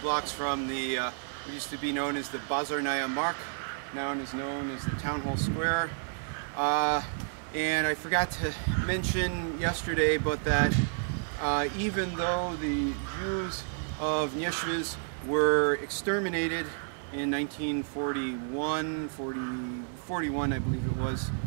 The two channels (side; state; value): left; silent; 57 dB below the other